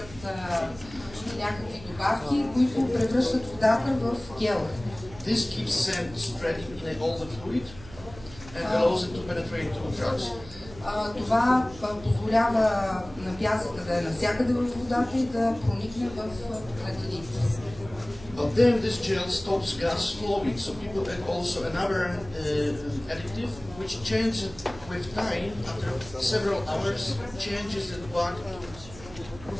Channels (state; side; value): noise; right; hum, 18 dB below the sound